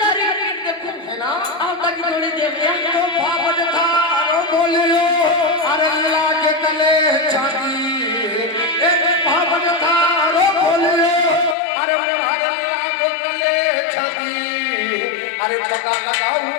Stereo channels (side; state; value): right; drops out; at 11.6 s